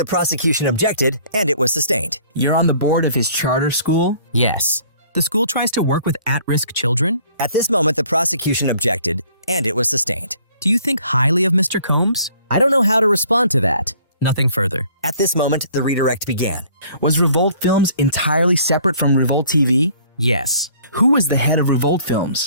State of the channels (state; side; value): inverted; both; correlation -0.57